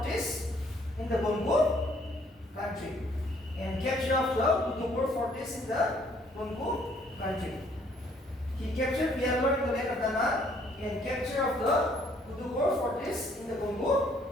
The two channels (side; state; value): both; normal; correlation 0.64